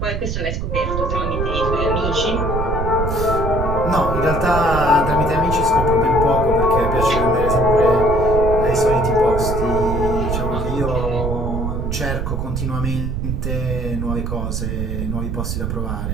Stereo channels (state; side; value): noise; right; rumble, 2 dB below the sound